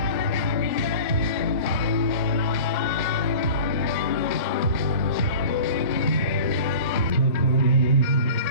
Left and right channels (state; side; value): inverted; both; correlation -0.39